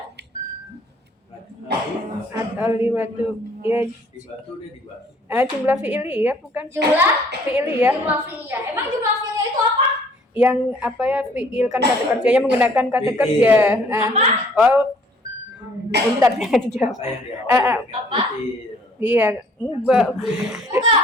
At-taliwatu. Ya, Di batu deh di batu. jumlah fi'iliyah bukan? Jumlah Fi'iliyah. jumlah fi'liyah. Emang jumlah fi'liyah itu apa? Yang apa ya fi'il kan kata kerjanya menggunakan kata kerja. Bentar ya dijawab. Apa yang di awal? Apa? Iya, enggak. Enggak,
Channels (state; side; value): normal; both; correlation 0.58